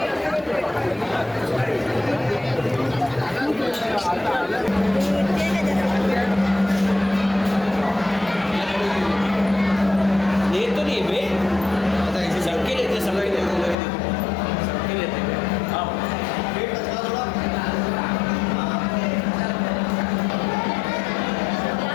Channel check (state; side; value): drops out; right; at 13.8 s